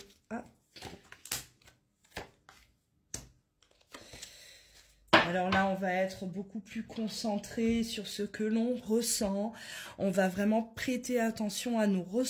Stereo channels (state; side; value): identical; both; correlation 1.00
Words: Ah. Alors là, on va être beaucoup plus concentré sur ce que l'on ressent. On va vraiment prêter attention à nos